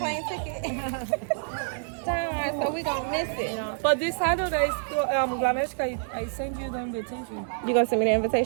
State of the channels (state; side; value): silent; left; digital silence